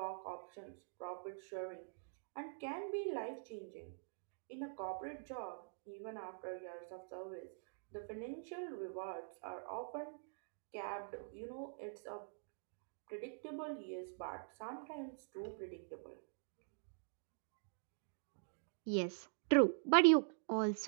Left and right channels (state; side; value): silent; left; digital silence